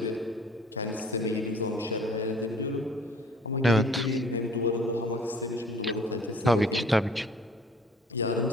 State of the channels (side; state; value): both; normal; correlation 0.52